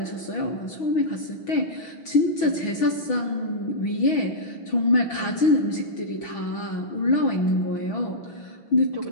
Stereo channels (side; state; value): right; late; 6.2 ms